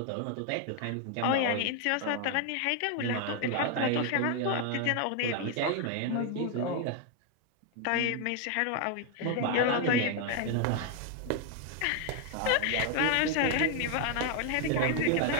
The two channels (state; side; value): different; both; correlation 0.01